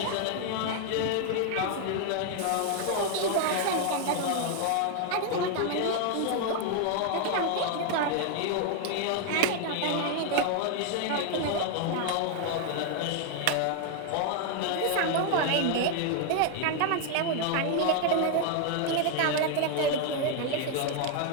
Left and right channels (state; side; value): different; both; correlation 0.00